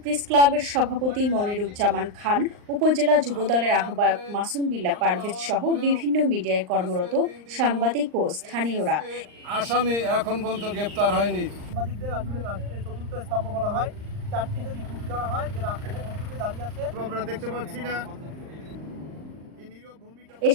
প্রেস ক্লাবের সভাপতি মনিরুজ্জামান খান, উপজেলা যুবদলের আহ্বায়ক মাসুম বিল্লাহ পারভেজ সহ বিভিন্ন মিডিয়ায় কর্মরত সাংবাদিক ও স্থানীয়রা। আসামি এখন পর্যন্ত গ্রেপ্তার হয়নি। সাংবাদিকদের আসলে রাষ্ট্রের চতুর্থ স্তম্ভ বলা হয়। চারটি যদি খুঁটি ধরা হয় যে রাষ্ট্রের চতুর্থে দাঁড়িয়ে আছে, আমরা দেখতে পাচ্ছি না। এ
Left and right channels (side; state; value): left; late; 39 ms